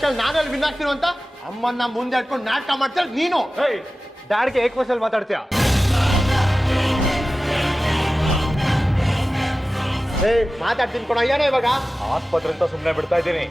ನಾನಲ್ಲಿ ವಿನ್ ಆಗ್ತೀರೋ ಅಂತ ಅಮ್ಮನ್ನ ಮುಂದೆ ಇಟ್ಕೊಂಡು ನಾಟಕ ಮಾಡ್ತಾರೆ ನೀನು. ಡ್ಯಾಡ್ಗೆ ಏಕವಚನಲ್ಲಿ ಮಾತಾಡ್ತೀಯ? ಮಾತಾಡ್ತೀನಿ ಕೊಡ. ಏನೋ ಇವಾಗ ಆಸ್ಪತ್ರೆ ಅಂತ ಸುಮ್ಮನೆ ಬಿಡ್ತಾ ಇದ್ದೀನಿ.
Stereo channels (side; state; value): both; normal; correlation 0.95